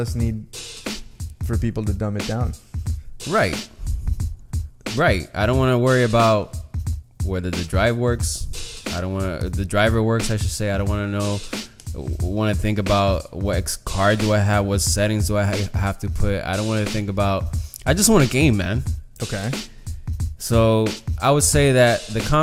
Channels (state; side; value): identical; both; correlation 1.00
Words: need for people to dumb it down. Right. I don't want to worry about whether the drive works. The driver works, I should say. I don't want to think about what card do I have, what settings do I have to put. I don't want to think about. I just want a game, man. Okay. So I would say that the